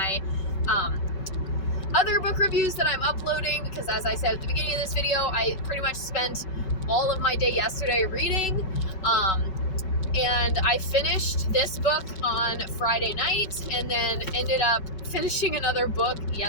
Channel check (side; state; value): right; late; 5.3 ms